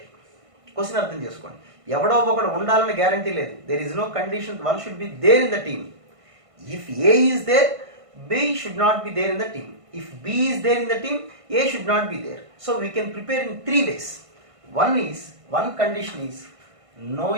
Question అర్థం చేసుకోండి. ఎవడో ఒకడు ఉండాలని గ్యారంటీ లేదు. There is no condition one should be there in the team. If A is there, B should not be there in the team. If B is there in the team, A should not be there. So we can prepare in 3 ways. One condition is no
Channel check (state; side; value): late; left; 1.5 ms